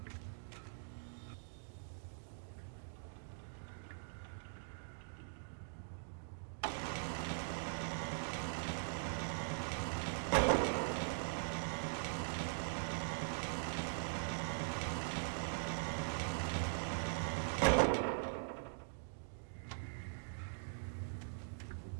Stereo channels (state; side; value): silent; left; digital silence